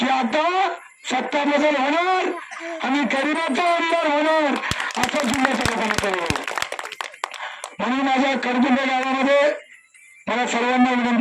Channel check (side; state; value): both; identical; correlation 1.00